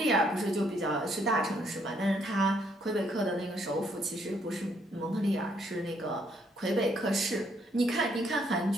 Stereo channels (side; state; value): both; normal; correlation 0.70